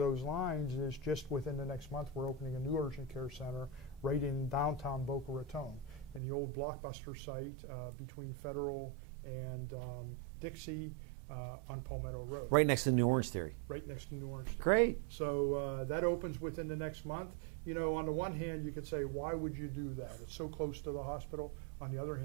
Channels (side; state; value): left; drops out; at 6.2 s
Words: lines is just within the next month, we're opening a new urgent care center right in downtown Boca Raton, in the old Blockbuster site between Fedele and Dixie on Palmetto Road. Right next to New Orange Theory. Right next to New Orange Theory. Great. So that opens within the next month. You know, on the one hand, you could say, why would you do that? It's so close to the hospital. On the other